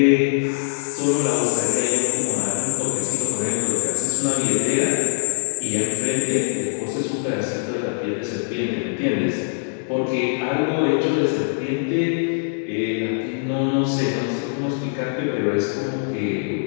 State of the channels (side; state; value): right; silent; digital silence